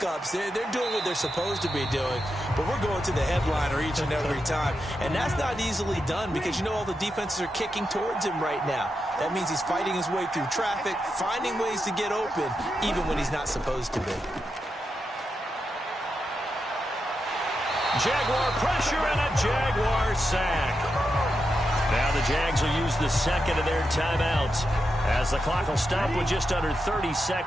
they're doing what they're supposed to be doing, but we're going to the headliner each and every time. And that's not easily done because, you know, all the defenses are kicking towards him right now. That means he's fighting his way through traffic, finding ways to get open, even when he's not supposed to be. Jaguar pressure and a Jaguar sack. Now the Jags will use the second of their timeouts, as the clock will stop with just under 30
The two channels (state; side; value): normal; both; correlation 0.87